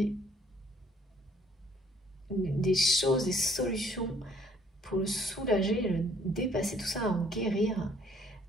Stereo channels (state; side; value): normal; both; correlation 0.61